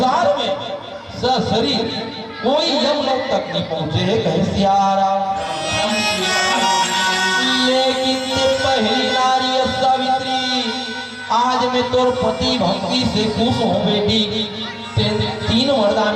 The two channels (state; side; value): identical; both; correlation 1.00